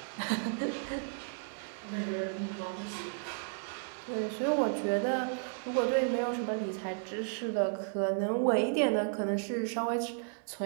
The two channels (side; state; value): left; silent; 55 dB below the other